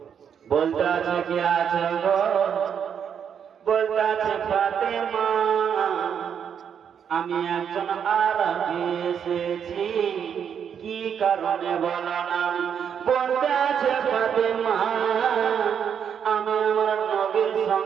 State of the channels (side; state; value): left; quieter; 7.9 dB